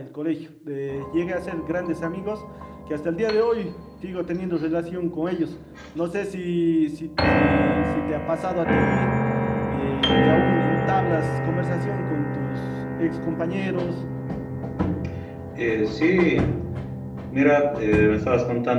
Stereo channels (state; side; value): identical; both; correlation 1.00